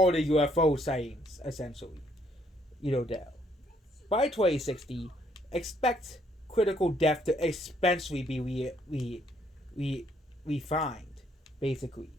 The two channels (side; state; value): both; normal; correlation 0.68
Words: the UFO sightings, essentially. There. By 2060, expect critical death to especially be refined, basically.